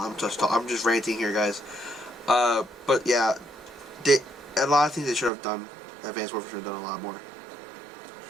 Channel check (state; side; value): drops out; left; at 5.3 s